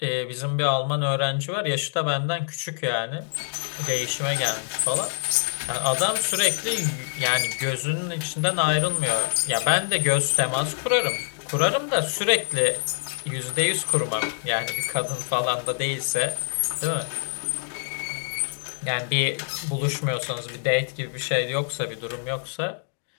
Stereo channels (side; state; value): right; silent; digital silence